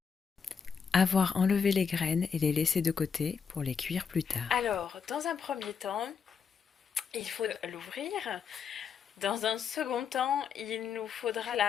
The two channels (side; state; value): right; quieter; 6.4 dB